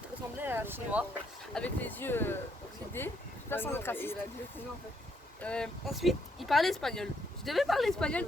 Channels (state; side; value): normal; both; correlation 0.73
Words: ressemblait à un chinois, avec les yeux oxydés, pas sans être raciste. Ensuite, il parlait espagnol. Je devais parler espagnol